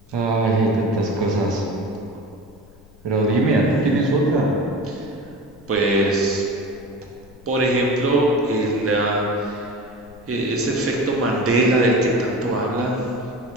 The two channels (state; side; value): noise; left; rumble, 25 dB below the sound